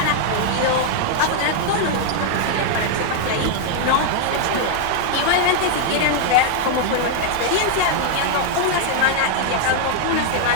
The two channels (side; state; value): both; different; correlation 0.00